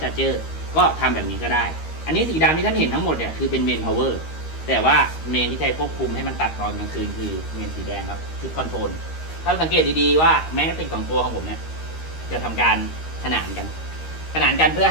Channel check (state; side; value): late; right; 13 ms